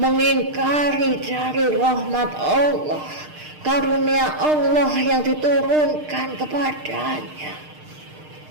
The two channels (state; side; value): late; left; 6.6 ms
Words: dari rahmat Allah, karunia Allah yang diturunkan kepadanya,